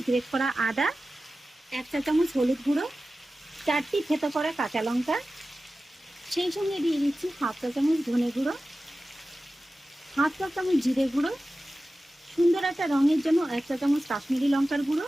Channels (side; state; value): both; normal; correlation 0.95